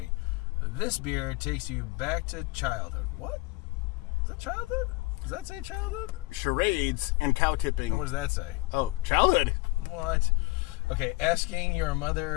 This beer takes you back to childhood. What? Is that childhood? Does that say childhood? Charades and cow tipping. What does that say? Oh, childhood. What? Okay, asking your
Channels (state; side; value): quieter; right; 23.2 dB